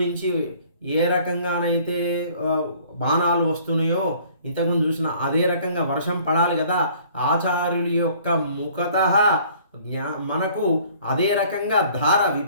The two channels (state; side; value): inverted; both; correlation -0.55